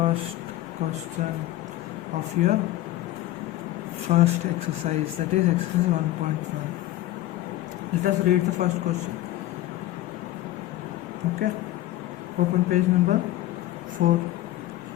question of your first exercise, that is exercise 1.1. Let us read the first question. Okay, open page number 4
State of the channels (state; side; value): quieter; right; 15.2 dB